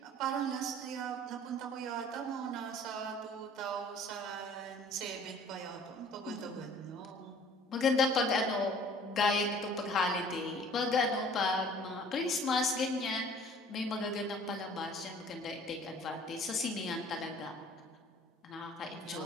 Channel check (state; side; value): normal; both; correlation 0.51